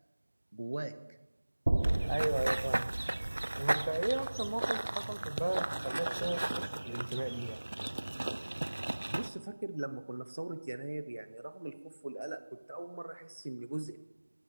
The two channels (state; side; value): inverted; both; correlation -1.00